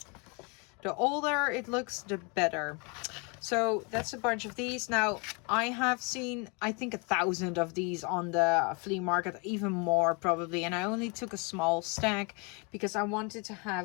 The older it looks, the better. So that's a bunch of these. Now I have seen, I think 1,000 of these on the flea market, even more probably, and I only took a small stack because I wanted to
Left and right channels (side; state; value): right; quieter; 32.1 dB